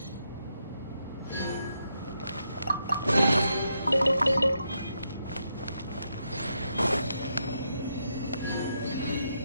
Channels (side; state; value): both; inverted; correlation -0.80